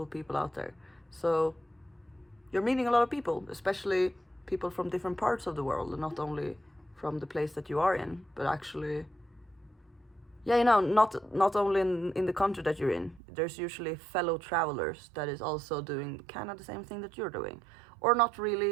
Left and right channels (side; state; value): left; drops out; at 13.2 s